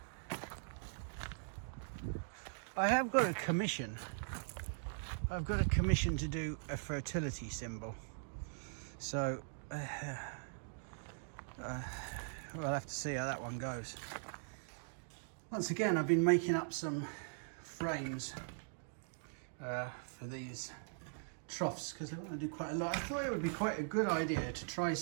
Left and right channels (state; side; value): silent; left; digital silence